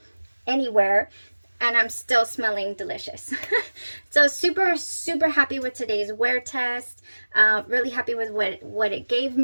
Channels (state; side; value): inverted; both; correlation -1.00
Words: anywhere, and I'm still smelling delicious. So super, super happy with today's wear test. Really happy with what it gave